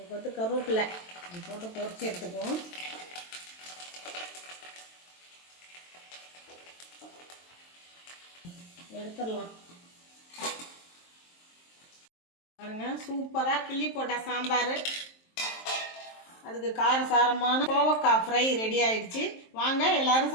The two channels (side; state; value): right; late; 23 ms